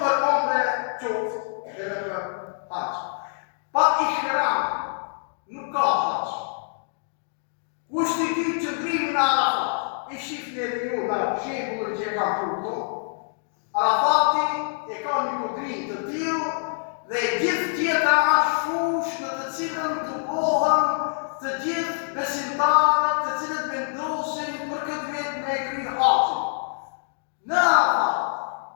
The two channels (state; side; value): silent; right; digital silence